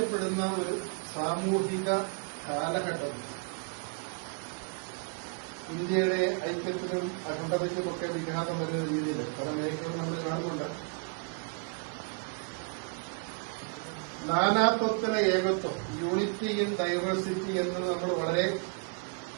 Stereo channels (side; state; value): left; quieter; 38.5 dB